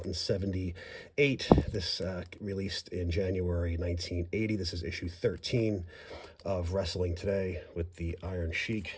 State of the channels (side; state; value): both; identical; correlation 1.00